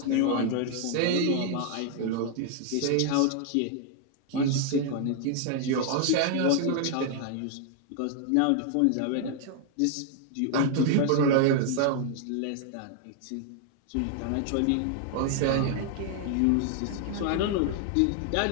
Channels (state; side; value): different; both; correlation 0.00